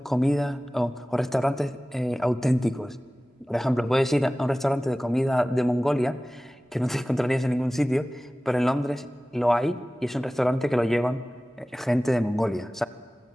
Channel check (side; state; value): both; normal; correlation 0.97